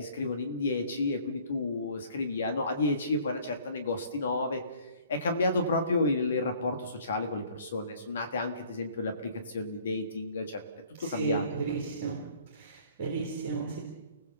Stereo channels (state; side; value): inverted; both; correlation -0.55